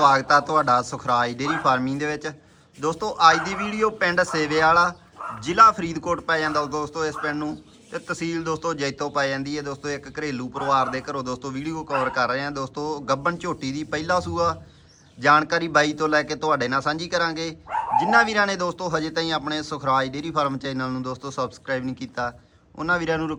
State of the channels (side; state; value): both; identical; correlation 1.00